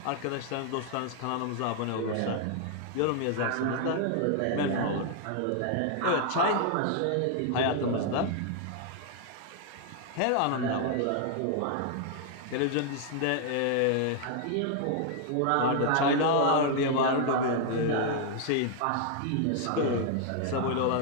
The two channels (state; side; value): different; both; correlation 0.00